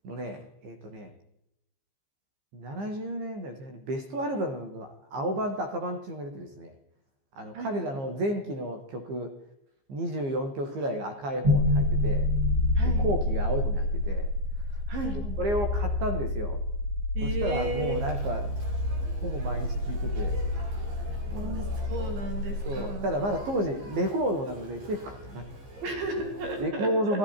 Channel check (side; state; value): left; late; 15 ms